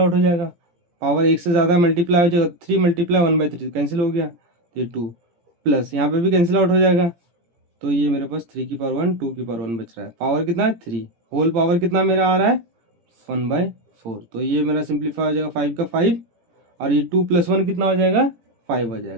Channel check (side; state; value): left; late; 17 ms